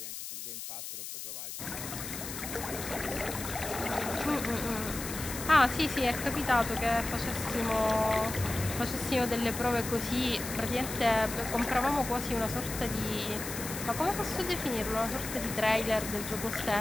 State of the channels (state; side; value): noise; left; hiss, 8 dB below the sound